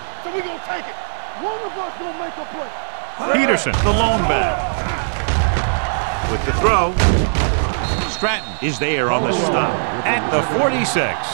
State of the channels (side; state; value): left; silent; digital silence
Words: So we're going to take it. One of us going to make a play. Peterson, the lone back. With the throw. Stratton is there on the stop at the 46.